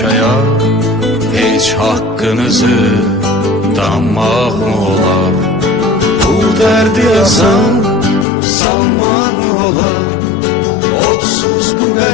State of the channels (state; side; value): drops out; right; at 8.2 s